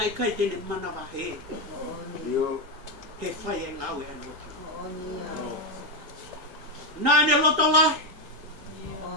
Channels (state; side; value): late; left; 1.8 ms